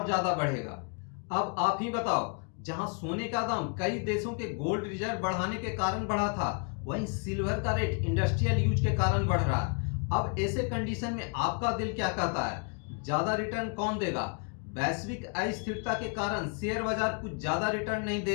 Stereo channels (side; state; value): right; quieter; 36.0 dB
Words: ज्यादा बढ़ेगा। अब आप ही बताओ, जहां सोने का दाम कई देशों के गोल्ड रिजर्व बढ़ाने के कारण बढ़ा था, वहीं सिल्वर का रेट इंडस्ट्रियल यूज के कारण बढ़ रहा है। अब ऐसे कंडीशन में आपका दिल क्या कहता है? ज्यादा रिटर्न कौन देगा? वैश्विक अस्थिरता के कारण शेयर बाजार कुछ ज्यादा रिटर्न नहीं दे